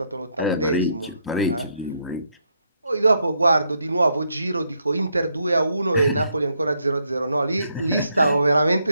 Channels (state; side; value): inverted; both; correlation -0.76